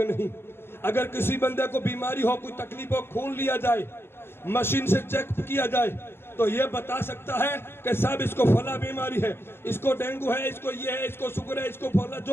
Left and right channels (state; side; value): late; right; 0.11 ms